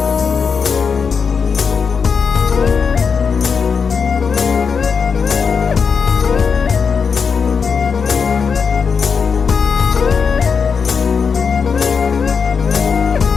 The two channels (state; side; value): quieter; right; 5.9 dB